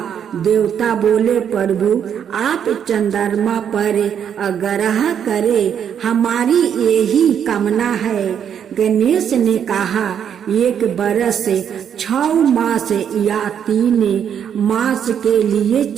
देवता बोले, प्रभु आप चंद्रमा पर आग्रह करें, हमारी यही कामना है। गणेश ने कहा, एक बरस 6 मास या 3 मास के लिए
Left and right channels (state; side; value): quieter; left; 8.5 dB